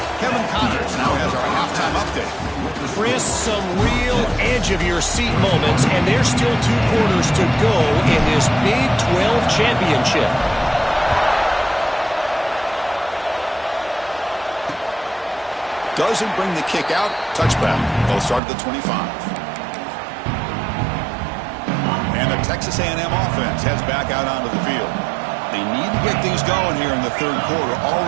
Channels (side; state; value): left; drops out; at 18.4 s